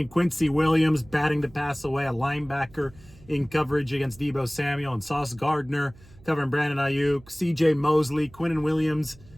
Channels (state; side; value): noise; right; hum, 24 dB below the sound